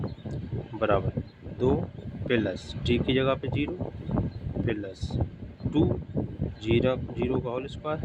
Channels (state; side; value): identical; both; correlation 1.00